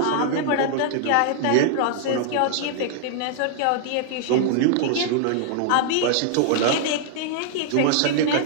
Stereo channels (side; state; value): both; different; correlation -0.01